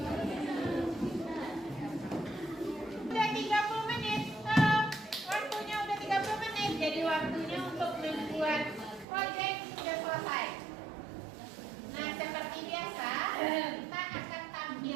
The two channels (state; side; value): drops out; left; at 9.1 s